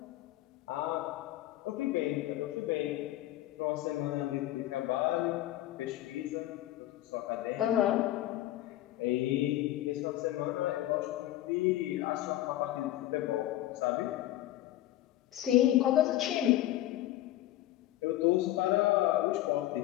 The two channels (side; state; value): right; quieter; 14.6 dB